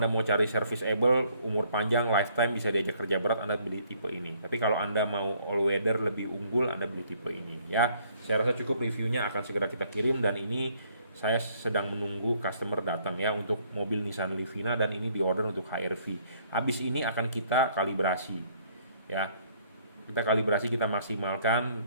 mau cari serviceable, umur panjang, lifetime, bisa diajak kerja berat, Anda beli tipe ini. Tapi kalau Anda mau all weather lebih unggul, Anda beli tipe ini ya. Saya rasa cukup, reviewnya akan segera kita kirim, dan ini saya sedang menunggu customer datang ya untuk mobil Nissan Livina, dan ini diorder untuk HR-V. Habis ini akan kita kalibrasi ya. Kita kalibrasi, kita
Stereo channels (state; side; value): inverted; both; correlation -0.64